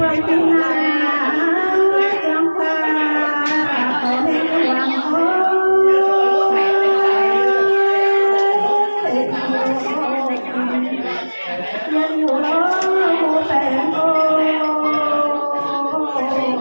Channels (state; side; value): inverted; both; correlation -1.00